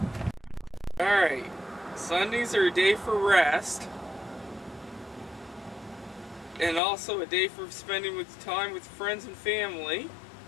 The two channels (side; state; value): right; drops out; at 6.8 s